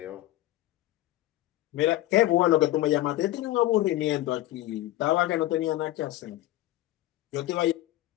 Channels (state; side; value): quieter; right; 15.7 dB